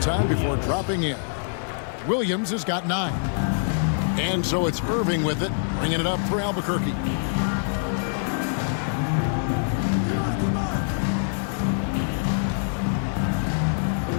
time before dropping in. Williams has got 9. And so it's Irving with it, bringing it up for Albuquerque.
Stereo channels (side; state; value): right; silent; digital silence